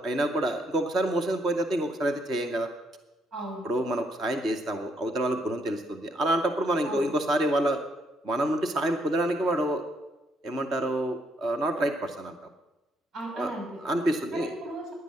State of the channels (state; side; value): normal; both; correlation 0.73